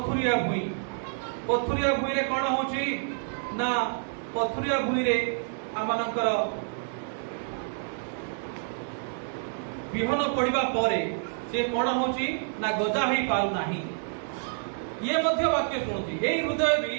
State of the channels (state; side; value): silent; left; digital silence